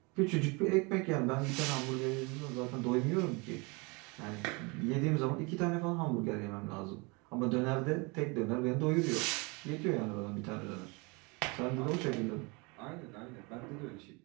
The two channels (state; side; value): quieter; left; 28.7 dB